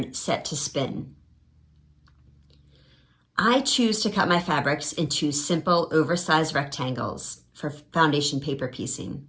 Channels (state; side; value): identical; both; correlation 1.00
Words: Set to Spin. I choose to cut my fabrics into simple oversized rectangles for foundation paper piecing.